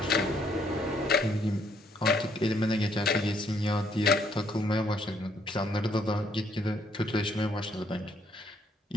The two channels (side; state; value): both; normal; correlation 0.69